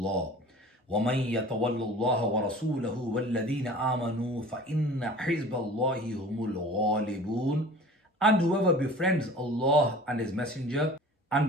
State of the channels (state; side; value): normal; both; correlation 0.43